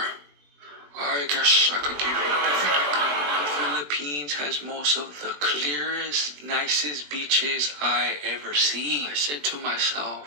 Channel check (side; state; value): left; late; 20 ms